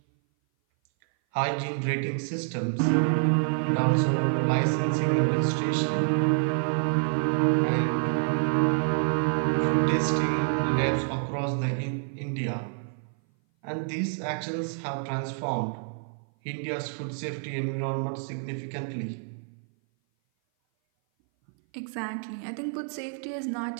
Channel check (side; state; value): left; silent; 57 dB below the other